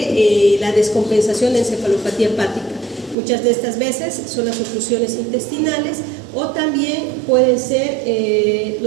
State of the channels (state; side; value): drops out; left; at 3.2 s